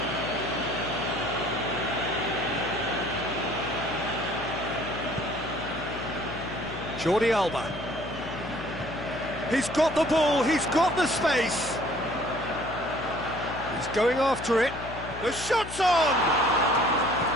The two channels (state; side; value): noise; left; hum, 11 dB below the sound